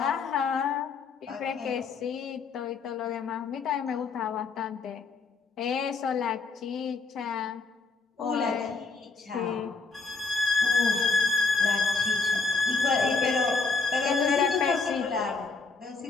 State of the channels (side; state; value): right; quieter; 4.3 dB